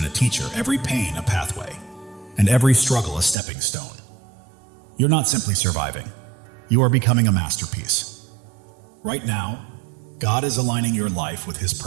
a teacher, every pain a pathway, and every struggle a stepping stone. You're not simply surviving. You are becoming a masterpiece. Right now, God is aligning your life with His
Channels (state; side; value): drops out; left; at 3.4 s